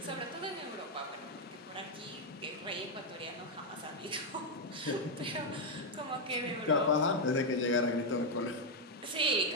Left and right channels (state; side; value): normal; both; correlation 0.00